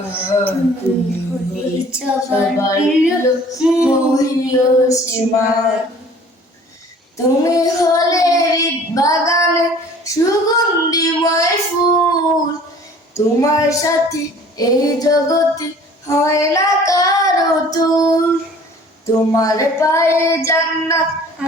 তুমি হলে সবার প্রিয় মহিয়সীমা। তুমি হলে হৃদ বাগানে সুগন্ধিময় ফুল, তোমার সাথে এই জগতে হয় না কারো তুল। তোমার পায়ে জান্নাত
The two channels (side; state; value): both; normal; correlation 0.50